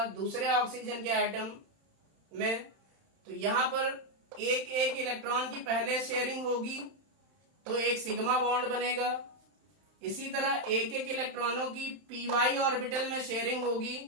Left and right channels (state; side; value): late; left; 31 ms